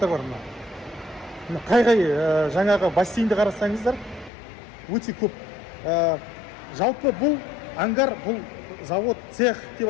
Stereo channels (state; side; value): drops out; right; at 4.3 s